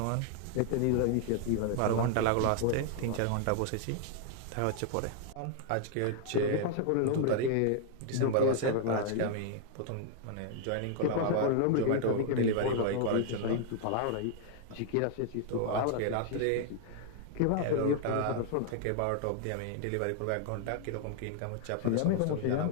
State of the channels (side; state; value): both; different; correlation 0.00